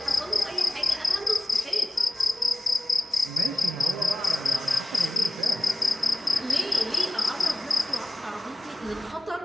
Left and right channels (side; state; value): both; normal; correlation 0.96